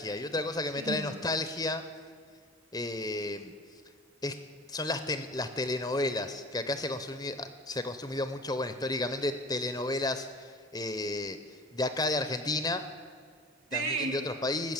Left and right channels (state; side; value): normal; both; correlation 0.40